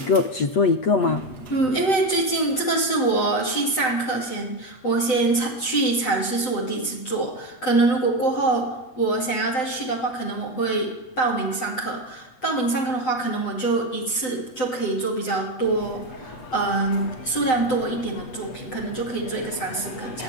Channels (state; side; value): late; right; 7.8 ms